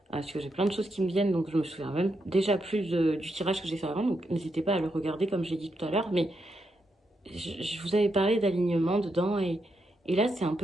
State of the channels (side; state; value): both; normal; correlation 0.82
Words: Parce que j'ai plein de choses qui me viennent, donc je me souviens même déjà plus du tirage que j'ai fait avant. Donc n'hésitez pas à le regarder comme j'ai dit tout à l'heure. Mais je vous avais parlé d'alignement dedans. Et là, c'est un